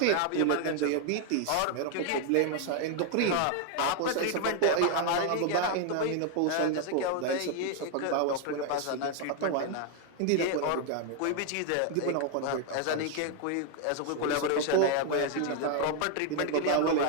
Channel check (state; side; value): different; both; correlation 0.00